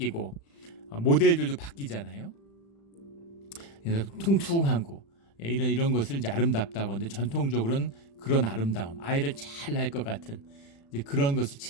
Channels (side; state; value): right; late; 36 ms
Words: 모델들도 바뀌잖아요. 그래서 퉁퉁하고 이런 것을 이제 아름답다고 하는데, 전통적으로는 그런 아름다움, 아이를 잘 낳을 것 같은 이제 그런 것을